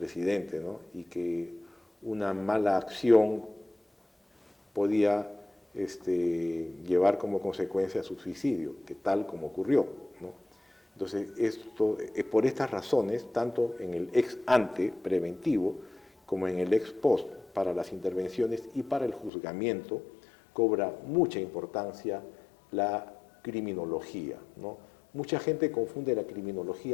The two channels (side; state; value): right; drops out; at 19.3 s